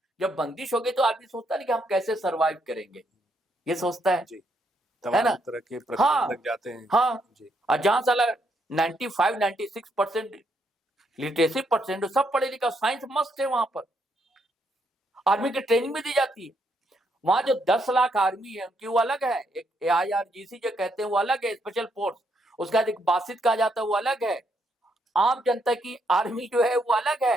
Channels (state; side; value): normal; both; correlation 0.75